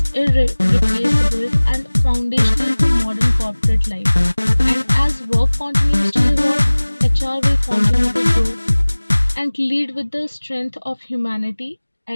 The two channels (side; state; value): both; inverted; correlation -1.00